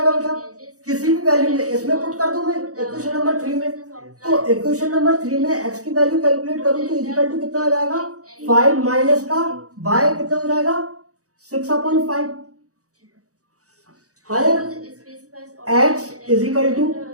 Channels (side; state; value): left; late; 0.66 ms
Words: बेटा किसी भी वैल्यू में इसमें पुट कर दूं मैं इक्वेशन नंबर 3 में, तो इक्वेशन नंबर 3 में x की वैल्यू कैलकुलेट करूं तो इज इक्वल टू कितना आ जाएगा 5 माइनस का y कितना हो जाएगा 6/5 है, x इज इक्वल टू